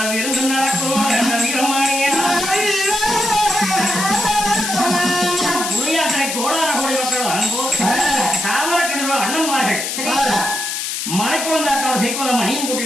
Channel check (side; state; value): left; noise; hiss, 3 dB below the sound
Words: விருந்து நடக்கும். அந்த வீரமானிய புளியாற்றை கோடார கோடி மக்கள் வரும்போது தாமரக்கிணறு அண்ணன்மார்கள் மலைக்குளந்தாட்டோட செய்வத மணியும்